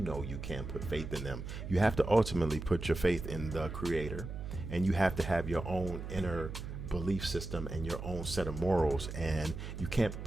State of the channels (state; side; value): noise; right; hum, 8 dB below the sound